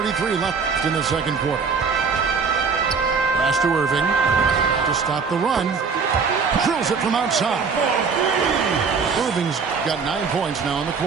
left in the second quarter. Pass to Irving to stop the run. Drills it from outside. Irving's got 9 points now in the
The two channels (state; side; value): quieter; left; 5.4 dB